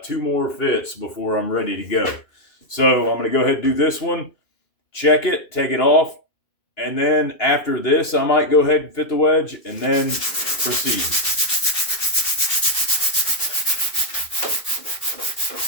2 more fits before I'm ready to go. So I'm going to go ahead and do this one, check it, take it off, and then after this, I might go ahead and fit the wedge and then proceed.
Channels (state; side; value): late; right; 2.7 ms